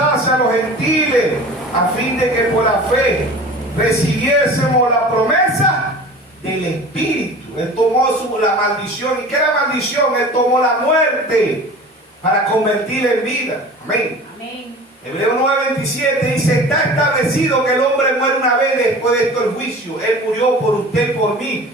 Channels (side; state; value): both; normal; correlation 0.39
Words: a los gentiles, a fin de que por la fe recibiésemos la promesa del Espíritu. Él tomó la maldición. ¿Y qué es la maldición? Él tomó la muerte para convertirla en vida. Amén. Amén. Hebreos 9:27 dice, está establecido que el hombre muere una vez, después de esto el juicio. Él murió por usted y por